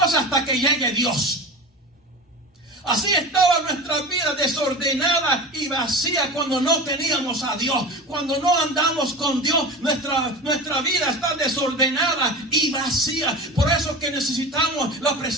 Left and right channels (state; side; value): normal; both; correlation 0.31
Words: hasta que llegue Dios. Así estaba nuestra vida desordenada y vacía cuando no teníamos a Dios. Cuando no andamos con Dios, nuestra vida está desordenada y vacía. Por eso que necesitamos la